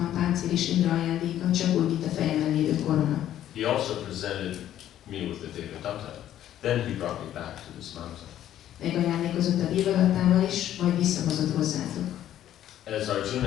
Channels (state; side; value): quieter; right; 11.8 dB